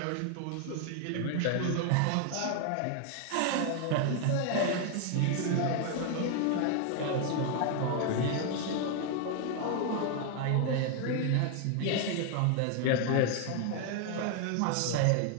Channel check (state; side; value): different; both; correlation 0.00